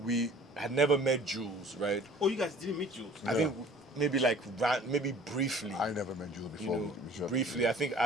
we had never met Jules, right? Oh, you guys didn't meet Jules? I think maybe maybe briefly. I never met Jules You before. know, we shot. briefly. I think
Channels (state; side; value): normal; both; correlation 0.50